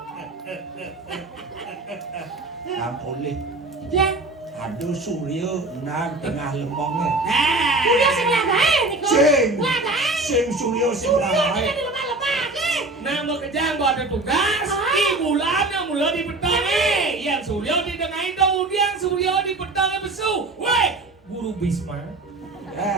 nak boleh Ya, ada surya nak tengah lemongnya surya sing lagae niku. Sing. Lagae. sing surya sing Surya kita lain di lemah-lemah ke. Nah mau kejang buat ada tugas. Di bulan yang mula di pedang yang surya di tengah kemudian surya di pedang besu. Weh, guru Bisma.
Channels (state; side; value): quieter; left; 3.0 dB